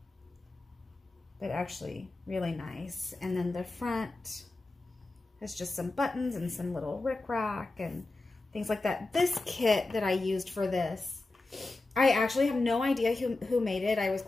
but actually really nice. And then the front has just some buttons and some little rickrack and things like that. This kit that I used for this, I actually have no idea who made it. I was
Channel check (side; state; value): right; quieter; 3.1 dB